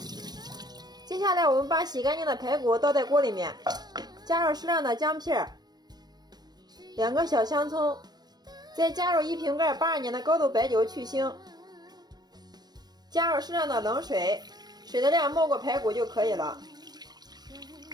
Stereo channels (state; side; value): late; left; 0.19 ms